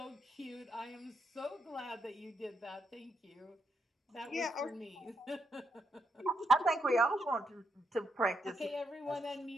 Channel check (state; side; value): normal; both; correlation 0.79